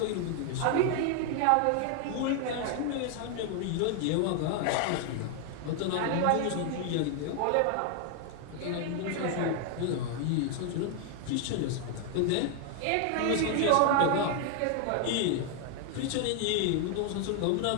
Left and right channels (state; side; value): different; both; correlation 0.00